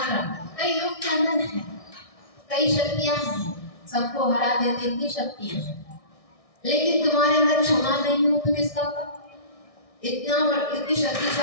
कई लोग के अंदर है, कई शक्तियां हैं, सबको हरा देने की शक्तियां हैं, लेकिन तुम्हारे अंदर क्षमा नहीं हो तो किसका का? इतनी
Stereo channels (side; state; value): right; late; 1.6 ms